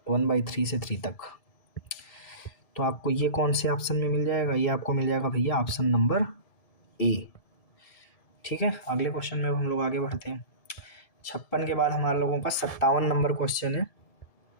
1/3 से 3 तक। तो आपको ये कौन से ऑप्शन में मिल जाएगा, ये आपको मिल जाएगा भैया ऑप्शन नंबर ए। ठीक है, अगले क्वेश्चन में हम लोग आगे बढ़ते हैं। 56 के बाद हमारे लोगों का 57 नंबर क्वेश्चन है।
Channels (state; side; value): late; right; 1.7 ms